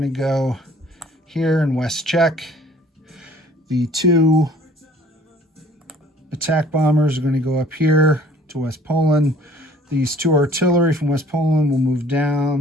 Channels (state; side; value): normal; both; correlation 0.54